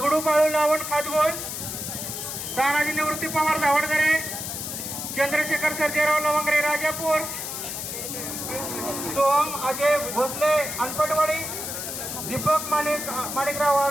बाळू लावण खातगोल तानाजी निवृत्ती पवार धावडदरे चंद्रशेखर सर्जेराव लवंगरे राजापूर सोहम अजय भोसले अनपटवाडी दीपक माणिकराव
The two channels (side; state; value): left; noise; hiss, 6 dB below the sound